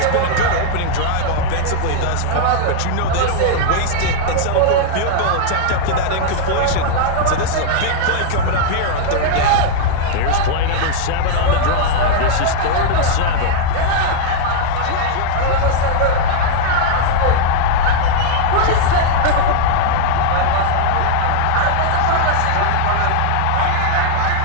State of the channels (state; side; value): different; both; correlation 0.00